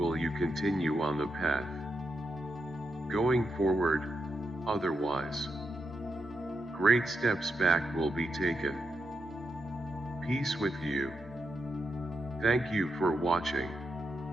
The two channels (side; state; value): both; normal; correlation 0.85